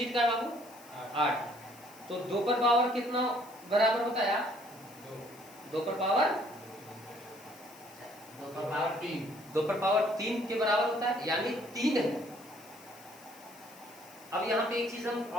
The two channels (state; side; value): noise; left; hiss, 22 dB below the sound